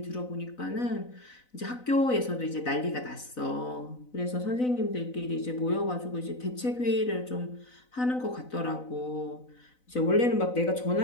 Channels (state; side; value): late; right; 4.0 ms